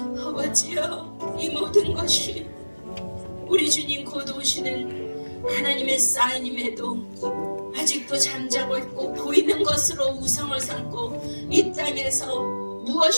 아버지여, 이 모든 것이 우리 주님 곧 오시는 하나님의 사인임에도 아직도 잠자고 있고 보이는 것으로 우상을 삼고 이 땅에서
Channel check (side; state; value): both; inverted; correlation -1.00